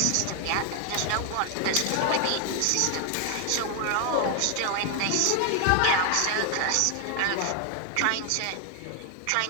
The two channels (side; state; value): both; different; correlation 0.00